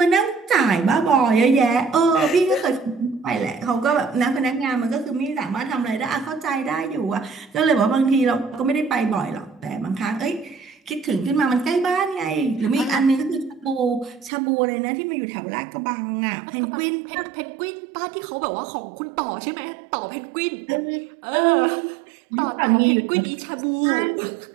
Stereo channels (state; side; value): drops out; left; at 14.3 s